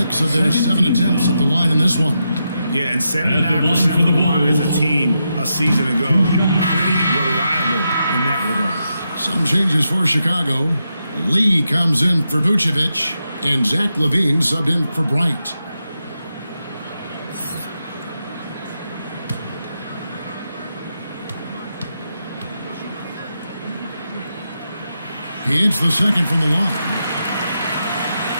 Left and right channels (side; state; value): both; inverted; correlation -0.85